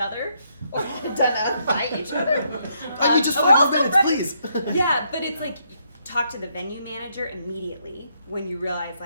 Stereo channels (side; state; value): both; inverted; correlation -0.74